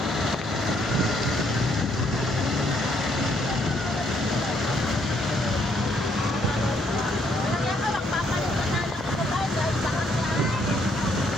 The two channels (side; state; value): both; normal; correlation 0.70